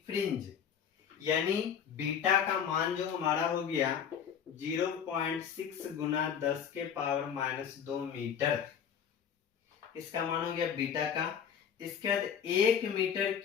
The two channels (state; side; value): quieter; right; 7.9 dB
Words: फ्रिंज, यानी बीटा का मान जो हमारा हो गया 0.6 गुना 10 के पावर माइनस 2 मीटर, इसका मान हो गया बीटा का। इसके बाद 1 मीटर